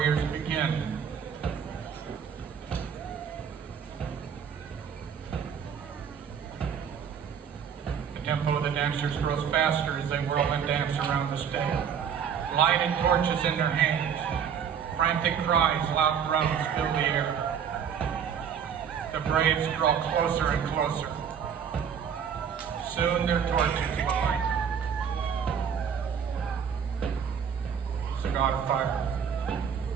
begin. The tempo of the dancers grows faster as they whirl and dance around the stage. Lighted torches in their hands. Frantic cries, loud drums fill the air. The braves draw closer and closer. Soon their torches light. It's the god of fire.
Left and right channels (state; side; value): quieter; left; 7.6 dB